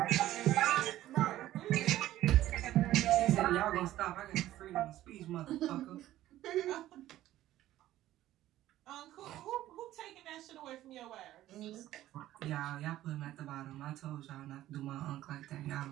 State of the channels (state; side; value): quieter; left; 14.2 dB